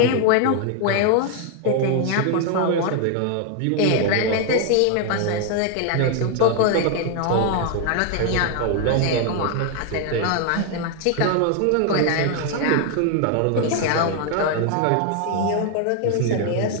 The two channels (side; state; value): both; different; correlation 0.00